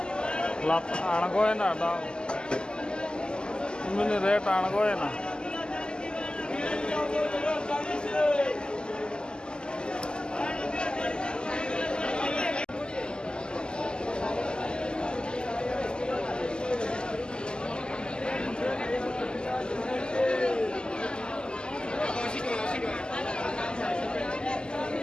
lap aanagoy na da mini rate aanagoy na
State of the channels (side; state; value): right; late; 0.047 ms